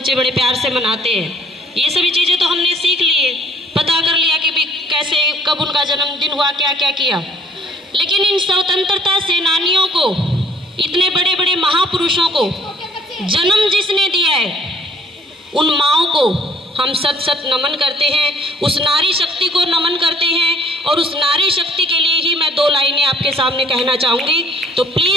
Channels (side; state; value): both; normal; correlation 0.60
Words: बड़े प्यार से मनाते हैं। ये सभी चीज़ें तो हमने सीख लिए, पता कर लिया कि भी कैसे कब उनका जन्मदिन हुआ, क्या क्या किया। लेकिन इन स्वतंत्रता सेनानियों को, इतने बड़े बड़े महापुरुषों को जन्म जिसने दिया है, उन माँओं को हम सत सत नमन करते हैं, उस नारी शक्ति को नमन करते हैं। और उस नारी शक्ति के लिए ही मैं 2 लाइनें आपके सामने कहना चाहूँगी, तो